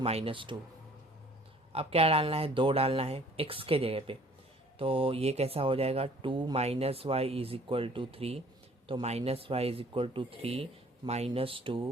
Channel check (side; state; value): both; normal; correlation 0.54